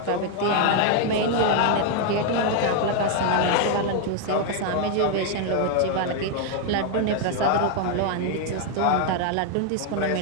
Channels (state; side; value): different; both; correlation 0.01